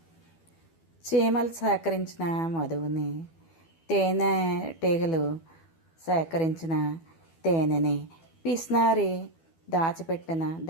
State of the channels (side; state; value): right; late; 12 ms